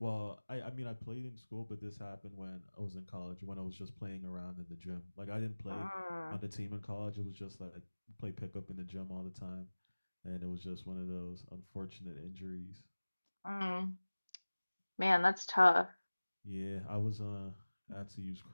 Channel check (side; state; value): both; inverted; correlation -1.00